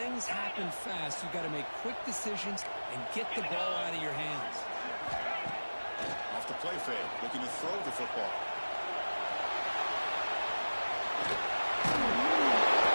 happen fast. You've got to make quick decisions and get the ball out of your hands. Off the play fake, looking to throw the football. The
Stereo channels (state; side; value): inverted; both; correlation -1.00